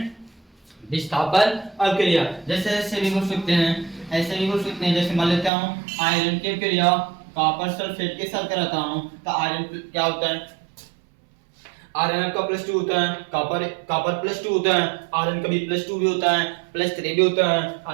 विस्थापन अपक्रिया। जैसे ऐसे भी बोल सकते हैं, जैसे मान लेता हूँ आयरन की क्रिया कॉपर सल्फेट के साथ कराता हूँ, तो आयरन क्या होता है, आयरन का +2 होता है, कॉपर +2 होता है, आयरन का भी +2 भी होता है, +3 भी होता है,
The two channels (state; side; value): drops out; left; at 5.5 s